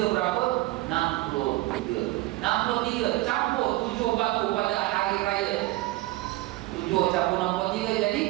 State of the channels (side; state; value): left; quieter; 19.0 dB